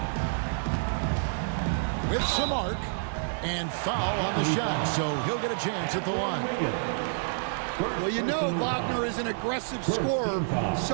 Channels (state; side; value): silent; left; digital silence